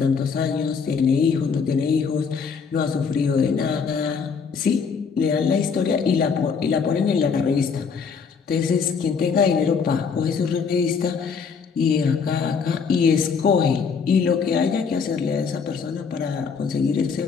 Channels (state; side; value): quieter; right; 5.8 dB